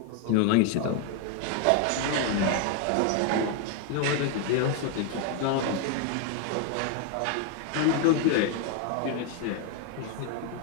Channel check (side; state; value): both; different; correlation 0.01